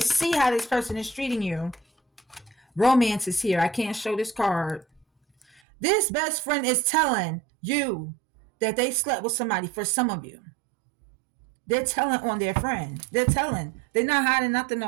how this person is treating you. Romance is here. I can't show this card. This best friend is telling you that they slept with somebody. For some of you, they're telling on their friend. They're telling. They're not hiding nothing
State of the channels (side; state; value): left; drops out; at 5.6 s